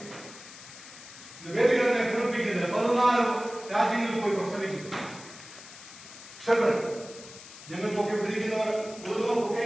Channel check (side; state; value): left; noise; hiss, 16 dB below the sound